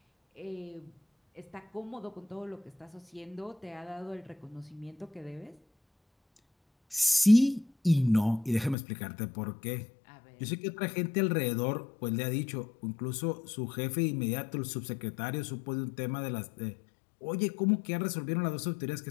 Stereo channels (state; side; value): drops out; right; at 8.8 s